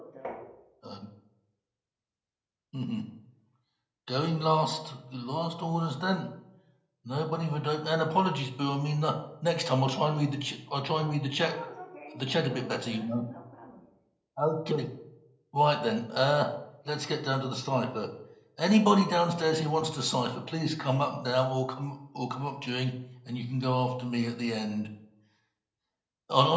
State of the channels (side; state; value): both; identical; correlation 1.00